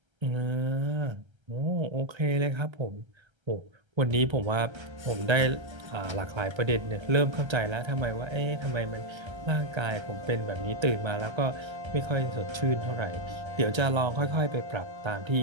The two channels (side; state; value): left; late; 1.3 ms